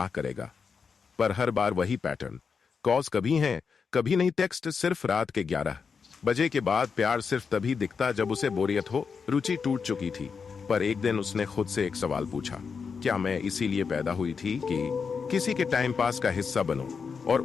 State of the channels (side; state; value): right; quieter; 5.7 dB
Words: करेगा। पर हर बार वही पैटर्न, कॉल्स कभी हैं कभी नहीं, टेक्स्ट सिर्फ रात के 11 बजे के बाद, प्यार सिर्फ तभी दिखता जब उसे बोरियत हो। रुचि टूट चुकी थी, पर एक दिन उसने खुद से एक सवाल पूछा, क्या मैं इसीलिए पैदा हुई थी कि किसी के टाइम पास का हिस्सा बनूं? और